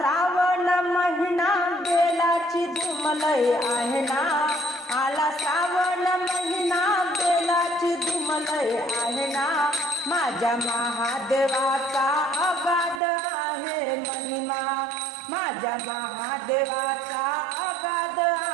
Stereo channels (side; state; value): left; drops out; at 13.0 s